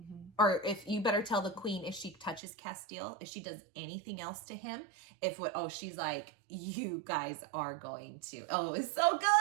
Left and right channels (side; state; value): left; drops out; at 2.4 s